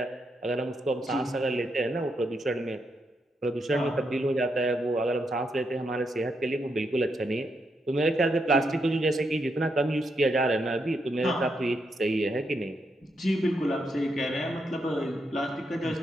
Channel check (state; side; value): normal; both; correlation 0.81